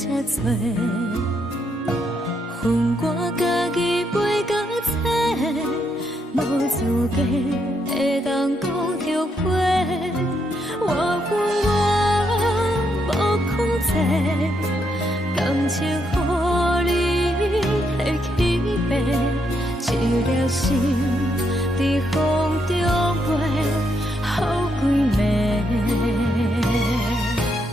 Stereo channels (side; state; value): both; normal; correlation 0.77